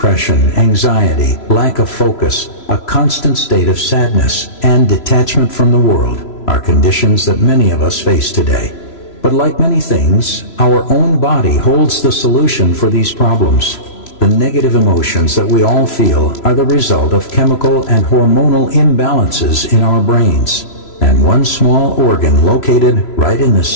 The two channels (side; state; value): right; late; 3.0 ms